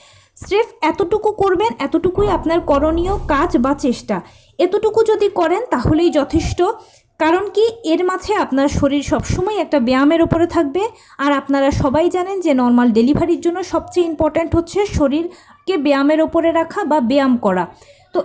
স্রেফ এতটুকু করবেন, এতটুকুই আপনার করণীয় কাজ বা চেষ্টা। এতটুকু যদি করেন তাহলেই যথেষ্ট। কারণ কি, এর মাঝে আপনার শরীর সবসময় একটা ব্যায়ামের ওপরে থাকবে। আর আপনারা সবাই জানেন যে নর্মাল ডেলিভারির জন্য সবচেয়ে ইম্পর্ট্যান্ট হচ্ছে শরীরকে ব্যায়ামের ওপরে রাখা বা ব্যায়াম করা। তো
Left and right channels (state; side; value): identical; both; correlation 1.00